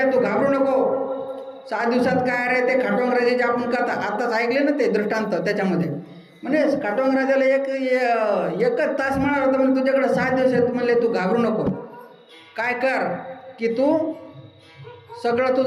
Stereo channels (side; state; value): both; identical; correlation 1.00